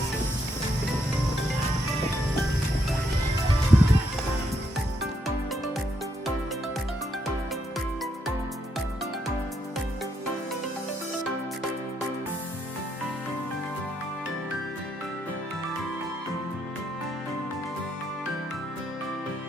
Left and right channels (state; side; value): normal; both; correlation 0.76